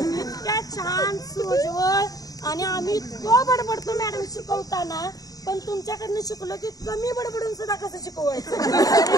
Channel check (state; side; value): late; right; 0.18 ms